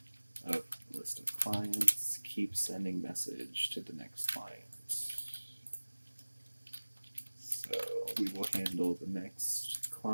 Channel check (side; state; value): both; inverted; correlation -1.00